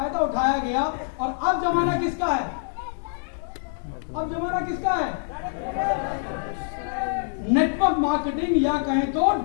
उठाया गया, और अब जमाना किसका है? अब जमाना किसका है? नेटवर्क मार्केटिंग या कहें तो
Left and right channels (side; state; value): right; silent; digital silence